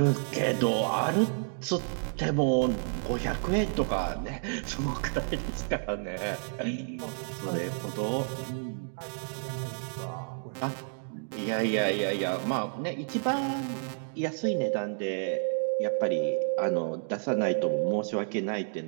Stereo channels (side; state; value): left; silent; digital silence